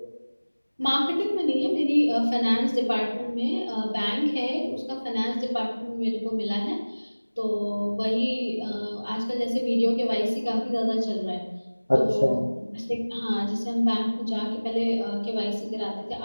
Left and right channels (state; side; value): inverted; both; correlation -1.00